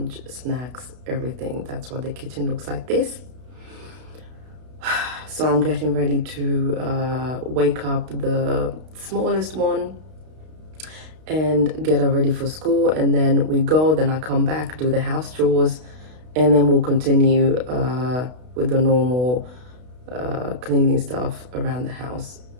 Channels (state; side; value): late; left; 32 ms